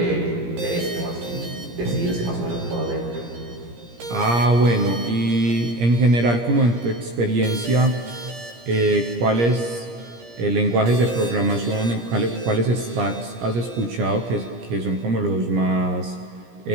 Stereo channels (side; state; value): left; late; 17 ms